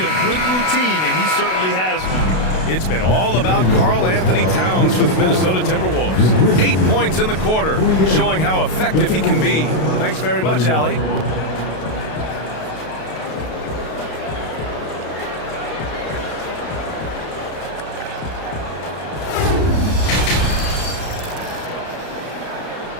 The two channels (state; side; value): late; right; 32 ms